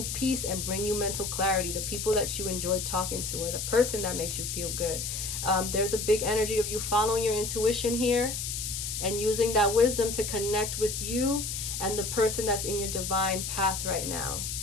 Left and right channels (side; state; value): left; noise; hiss, 4 dB below the sound